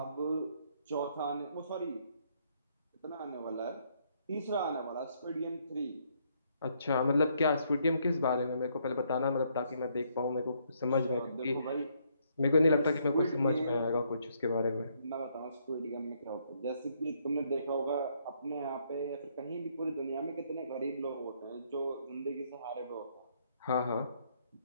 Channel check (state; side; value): inverted; both; correlation -0.71